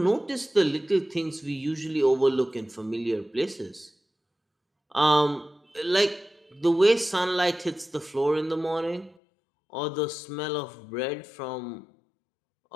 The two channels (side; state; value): right; drops out; at 9.2 s